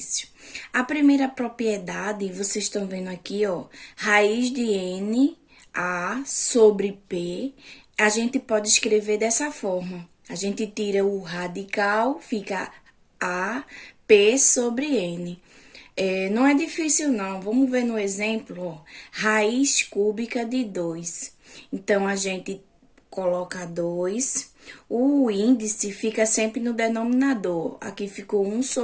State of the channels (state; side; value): identical; both; correlation 1.00